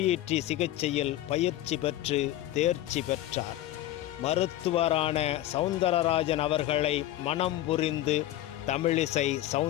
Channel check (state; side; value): quieter; right; 14.1 dB